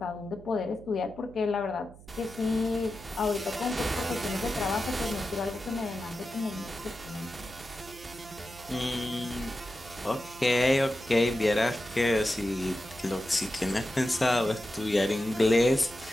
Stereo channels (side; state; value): right; noise; hum, 20 dB below the sound